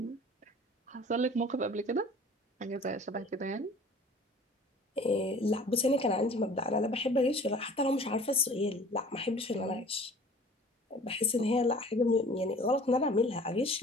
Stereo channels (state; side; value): normal; both; correlation 0.47